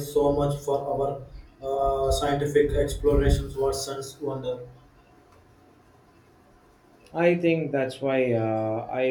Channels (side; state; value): both; identical; correlation 1.00